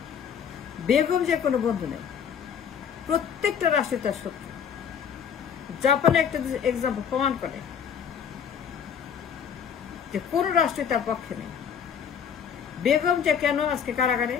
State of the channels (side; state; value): right; quieter; 7.6 dB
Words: বেগম যে কোনো বন্ধু নেই, প্রত্যেকটা রাষ্ট্রে তার শত্রু। জাপানে একটা এক্সাম্পল প্রমাণ করে যে কোন রাষ্ট্রে তার পক্ষে নেই। বেগম যে কেন আজকে কারাগারে,